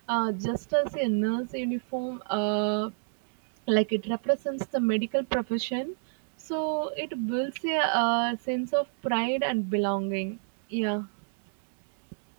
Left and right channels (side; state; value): left; silent; digital silence